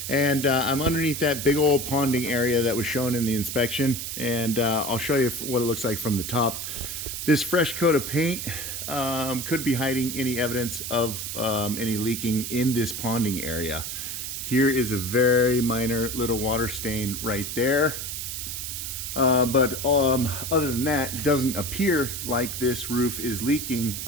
and I'm underneath that big old ponding area that was shown in the inspection, and I'll show you what it looks like from the top. This fresh coat of paint could be hiding any evidence of any leaking in this ponding area. Here is a very minor little water stain right there. But other than that, it doesn't appear like this roof is leaking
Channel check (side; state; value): right; noise; hiss, 5 dB below the sound